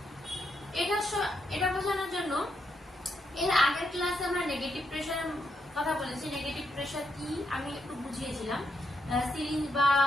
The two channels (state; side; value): normal; both; correlation 0.80